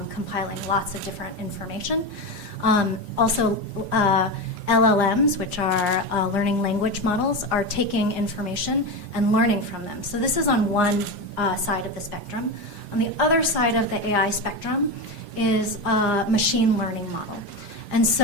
compiling lots of different information. Also, LLMs, which are learning language models, are taking information and learning from them. So this is on one side of the spectrum. On the other side of the AI spectrum is a machine learning model. And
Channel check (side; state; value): left; late; 4.9 ms